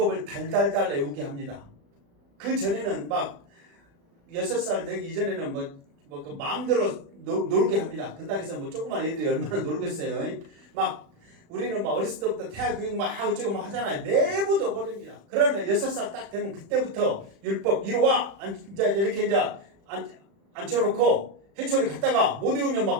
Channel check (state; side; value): late; left; 36 ms